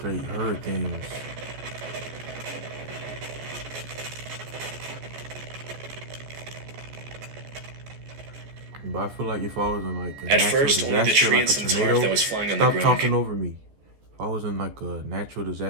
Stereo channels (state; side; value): late; left; 14 ms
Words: hurricanes. But I feel like if I was in like a At natural first, only the disaster, tree like and a some tarp tornado, that was flying on the stop ground talking over me. If I was in like a natural